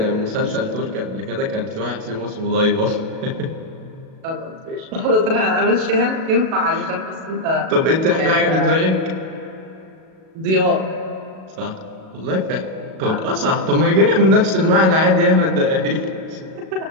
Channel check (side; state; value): left; late; 37 ms